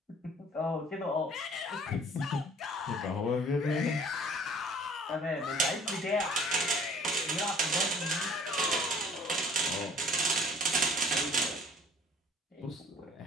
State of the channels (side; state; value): both; normal; correlation 0.53